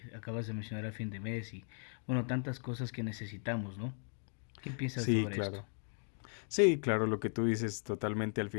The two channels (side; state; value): right; silent; 53 dB below the other